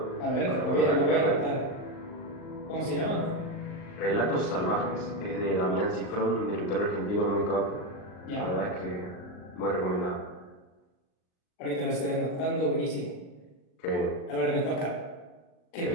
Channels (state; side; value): late; right; 39 ms